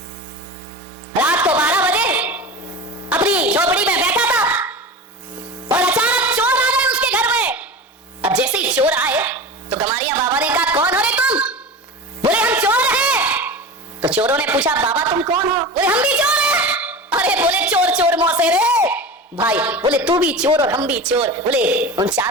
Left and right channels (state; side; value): normal; both; correlation 0.30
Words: रात को 12 बजे अपनी झोपड़ी में बैठा था और अचानक चोर आ गए उसके घर में। अब जैसे ही चोर आए तो गमारिया बाबा ने कहा कौन हो रे तुम? बोले हम चोर हैं। तो चोरों ने पूछा बाबा तुम कौन हो? बोले हम भी चोर हैं। अरे बोले चोर चोर मौसे रे भाई, बोले तू भी चोर और हम भी चोर। बोले उन